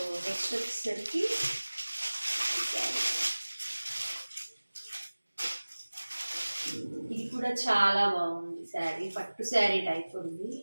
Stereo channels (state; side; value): inverted; both; correlation -1.00